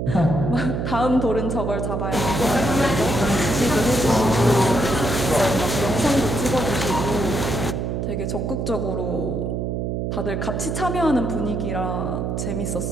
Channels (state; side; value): noise; right; hum, 2 dB below the sound